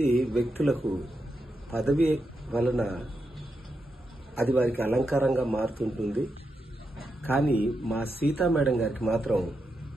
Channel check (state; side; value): normal; both; correlation 0.85